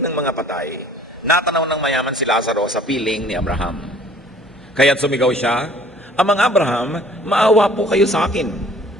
mga patay, natanaw ng mayaman si Lazaro sa piling ni Abraham. Kaya't sumigaw siya, Amang Abraham, maawa po kayo sa akin.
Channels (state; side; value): normal; both; correlation 0.54